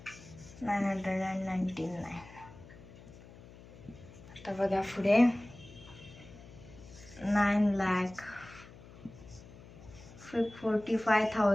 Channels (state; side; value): noise; left; hum, 19 dB below the sound